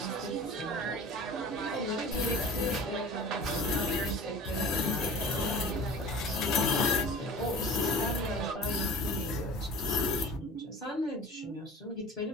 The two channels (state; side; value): normal; both; correlation 0.40